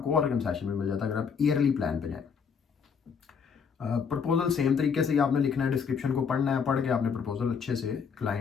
और कंसेशन भी मिल जाता है अगर आप ईयरली प्लान पे जाएं। प्रपोजल सेम तरीके से ही आपने लिखना है, डिस्क्रिप्शन को पढ़ना है, पढ़ के आपने प्रपोजल अच्छे से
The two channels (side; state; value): right; quieter; 6.3 dB